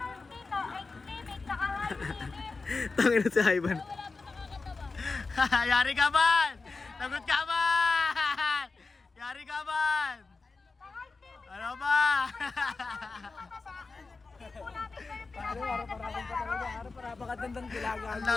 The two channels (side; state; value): right; quieter; 4.0 dB